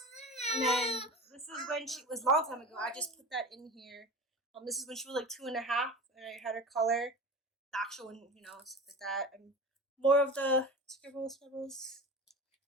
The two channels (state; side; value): normal; both; correlation 0.32